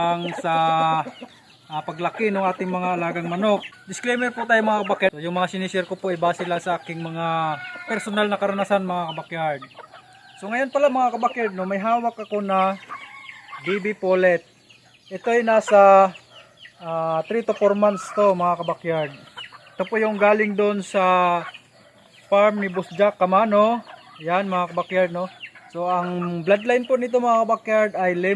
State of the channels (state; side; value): identical; both; correlation 1.00